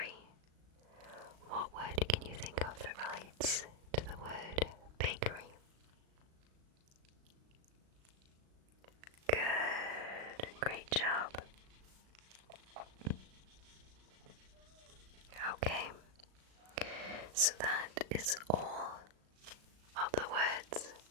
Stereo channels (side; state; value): left; late; 37 ms